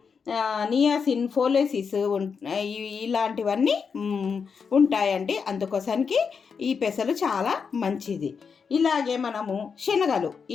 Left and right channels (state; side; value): quieter; right; 5.9 dB